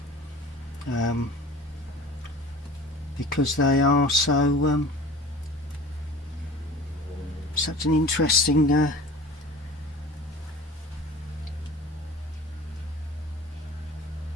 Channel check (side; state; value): both; normal; correlation 0.40